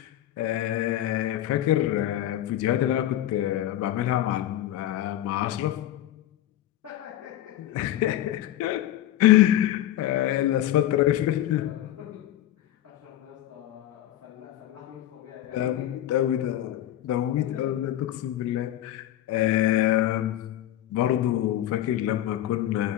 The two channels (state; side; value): quieter; right; 13.0 dB